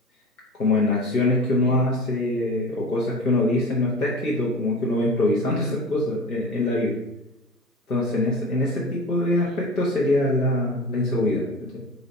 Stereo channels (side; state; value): both; normal; correlation 0.35